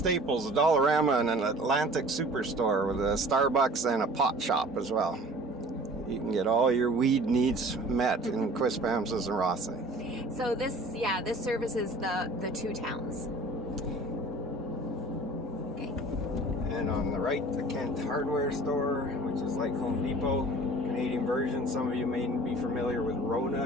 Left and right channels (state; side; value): normal; both; correlation 0.46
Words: a Dollarama, and an Atlantic Superstore with a Starbucks and a pot shop as well. You can get all your weed needs met in Quispamsis and Rothesay. So this services the two towns. Okay. And on the right, the Kent Hardware Store, which is like Home Depot, Canadian version. Some of you may be familiar with